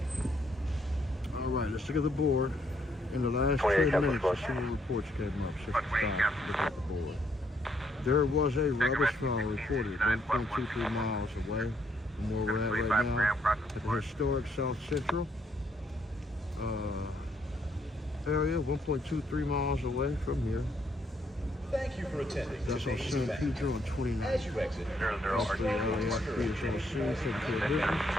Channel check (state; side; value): normal; both; correlation 0.72